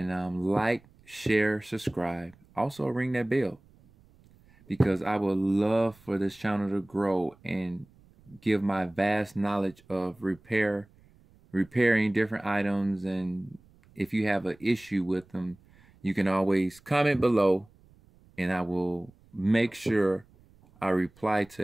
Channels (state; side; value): noise; right; rumble, 29 dB below the sound